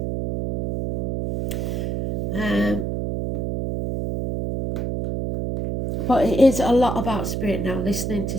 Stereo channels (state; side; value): noise; right; hum, 2 dB below the sound